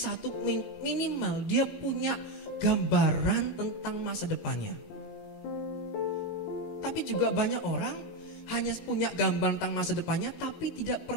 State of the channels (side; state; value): right; late; 19 ms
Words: minimal dia punya gambaran tentang masa depannya. Tapi juga banyak orang hanya punya gambaran tentang masa depannya tapi tidak